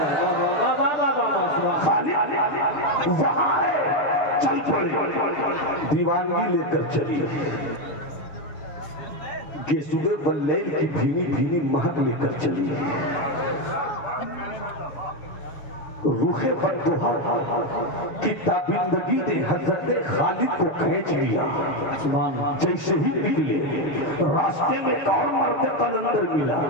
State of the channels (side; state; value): right; late; 6.5 ms